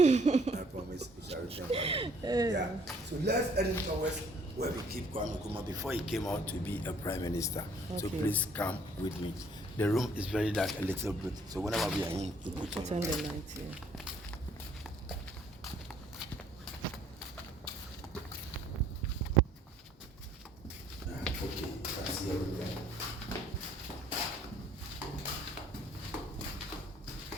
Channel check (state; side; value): normal; both; correlation 0.61